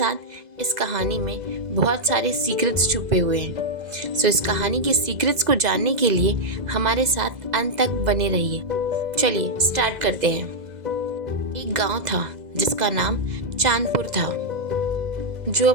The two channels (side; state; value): left; late; 2.0 ms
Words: इस कहानी में बहुत सारे सीक्रेट्स छुपे हुए हैं। सो इस कहानी के सीक्रेट्स को जानने के लिए हमारे साथ अंत तक बने रहिए। चलिए स्टार्ट करते हैं। एक गांव था जिसका नाम चांदपुर था, जो